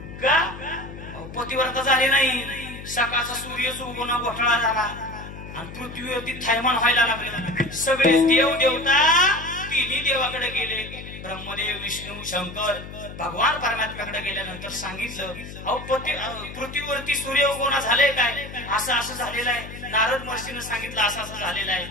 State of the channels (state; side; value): noise; left; hum, 12 dB below the sound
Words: का? पतिव्रता झाली नाही. सकाळचा सूर्यच उगवणं घोटाळा झाला आणि पृथ्वीवरती थैमान व्हायला लागले. सगळे देव देवता तिन्ही देवाकडे गेले. ब्रह्मदेव, विष्णू, शंकर, भगवान परमात्म्याकडे गेल्यानंतर सांगितलं, अहो पृथ्वीवरती सूर्य उगवणं झालंय काय? असं असं झालेलं आहे. नारद महर्षीनं सांगितलं असं असं झालेलं आहे.